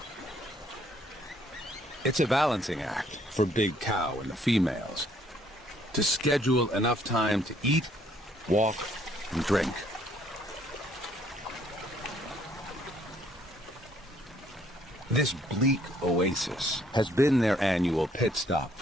It's a balancing act for Big Cow and the females to schedule enough time to eat, walk, and drink. This bleak oasis has been their annual pit stop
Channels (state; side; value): normal; both; correlation 0.64